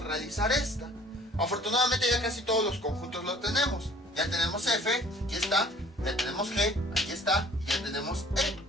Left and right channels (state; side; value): normal; both; correlation 0.53